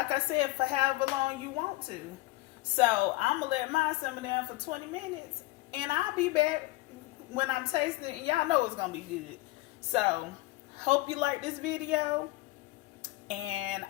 I said, for however long you want to. So I'm gonna let mine simmer down for 20 minutes, and I'll be back when I'm tasting it, and y'all know it's gonna be good. So hope you like this video, and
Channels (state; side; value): quieter; right; 20.2 dB